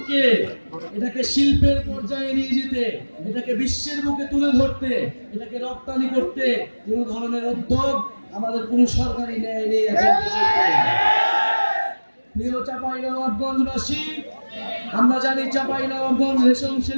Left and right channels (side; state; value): both; inverted; correlation -1.00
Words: এটাকে শিল্পের পর্যায়ে নিয়ে যেতে, এটাকে বিশ্বের বুকে তুলে ধরতে, এটাকে রপ্তানি করতে কোন ধরনের উদ্যোগ আমাদের কোন সরকারি নেয় নেই। প্রিয় চাঁপাইনবাবগঞ্জবাসী, আমরা জানি চাঁপাইনবাবগঞ্জ রেশম